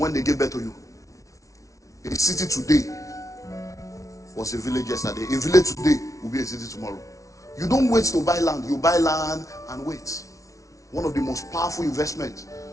they gave birth to you. A city today was a village yesterday. A village today will be a city tomorrow. You don't wait to buy land. You buy land and wait. One of the most powerful investments.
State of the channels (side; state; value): right; late; 0.16 ms